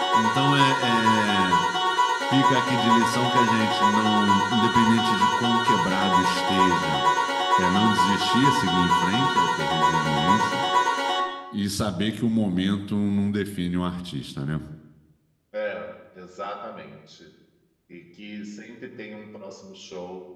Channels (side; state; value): both; identical; correlation 1.00